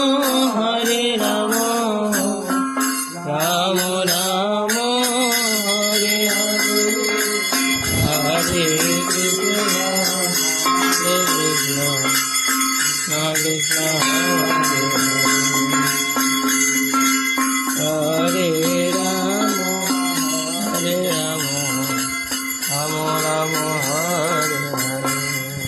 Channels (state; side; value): identical; both; correlation 1.00